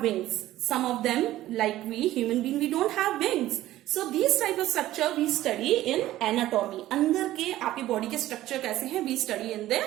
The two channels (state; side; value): quieter; left; 14.8 dB